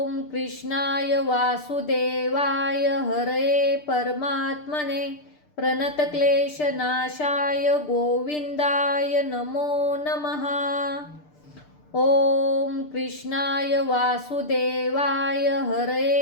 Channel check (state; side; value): late; right; 6.7 ms